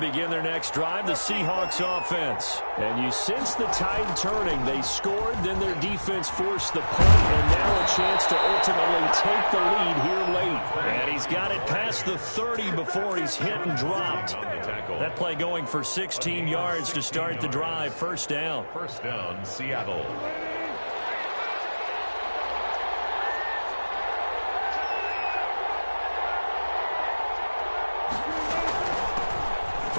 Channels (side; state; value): both; inverted; correlation -1.00